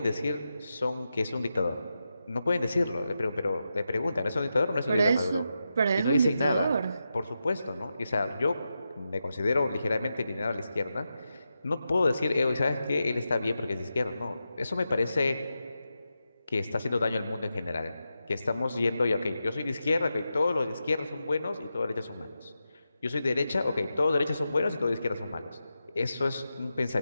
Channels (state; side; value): inverted; both; correlation -0.89